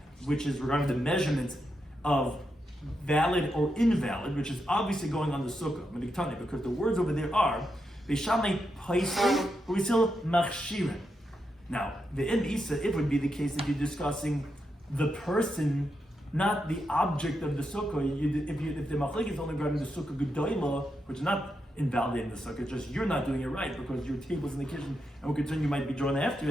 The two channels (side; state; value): both; normal; correlation 0.84